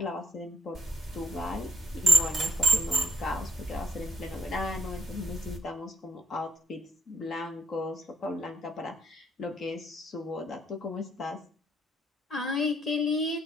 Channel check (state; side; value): normal; both; correlation 0.75